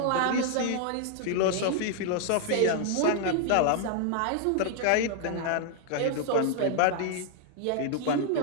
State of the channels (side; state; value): both; different; correlation 0.00